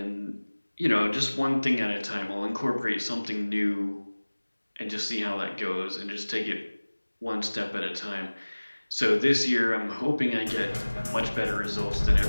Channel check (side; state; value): both; inverted; correlation -1.00